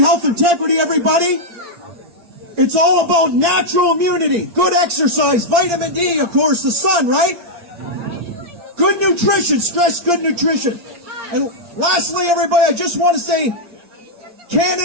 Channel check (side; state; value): left; late; 8.7 ms